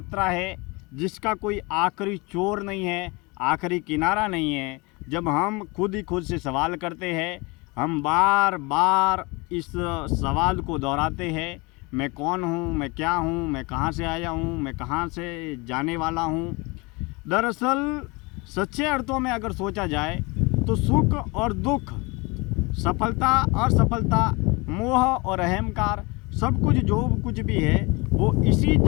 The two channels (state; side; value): quieter; right; 26.4 dB